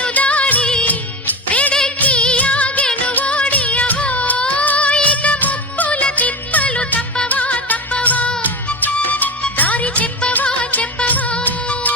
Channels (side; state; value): both; normal; correlation 0.23